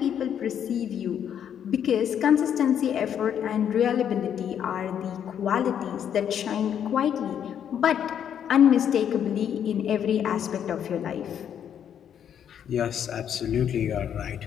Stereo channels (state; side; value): quieter; right; 9.0 dB